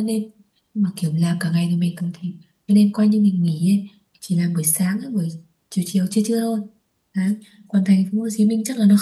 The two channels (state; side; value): identical; both; correlation 1.00